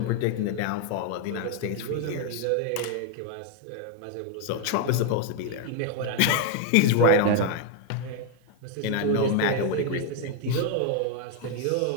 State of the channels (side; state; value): both; different; correlation 0.01